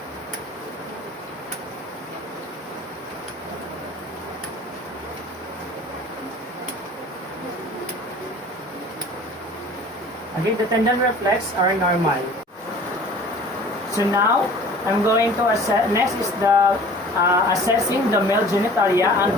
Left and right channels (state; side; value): normal; both; correlation 0.46